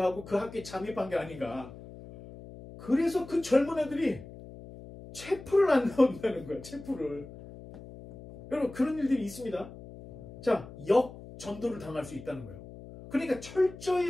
하고 그 학교에 잠입한 게 아닌가. 그래서 그 젊은 애들이 채플을 안 나온다는 거야. 채플을. 여러분 그런 일들이 있습니다. 자, 역전도를 당할 수 있다는 거예요. 그러니까 철저히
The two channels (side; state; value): left; noise; hum, 16 dB below the sound